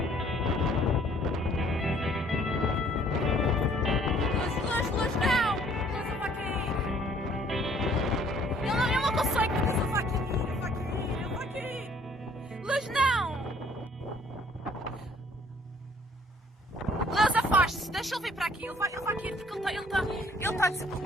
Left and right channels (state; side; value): normal; both; correlation 0.59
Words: Deixa ele vir para aqui, ele vai cair porque ele está